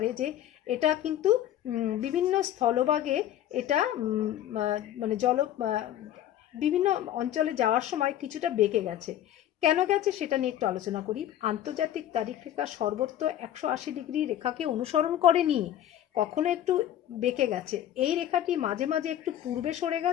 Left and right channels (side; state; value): right; quieter; 11.7 dB